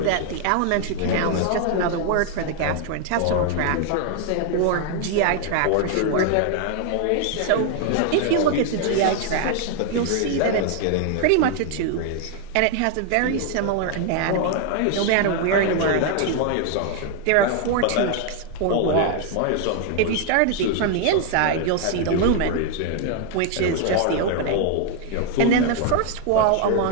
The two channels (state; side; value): different; both; correlation 0.00